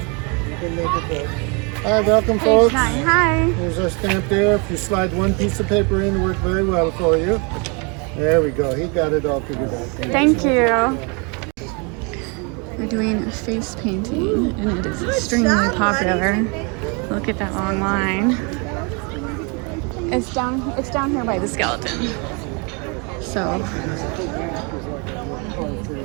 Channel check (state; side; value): quieter; left; 32.7 dB